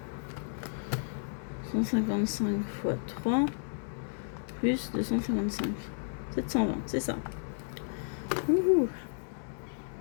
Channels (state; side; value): silent; right; digital silence